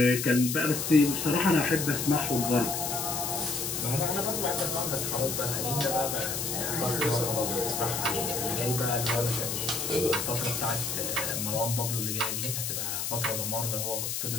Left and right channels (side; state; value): left; noise; hiss, 2 dB below the sound